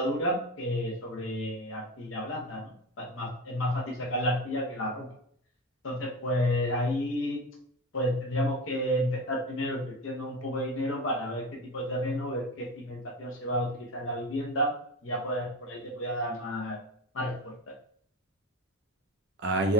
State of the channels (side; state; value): both; normal; correlation 0.26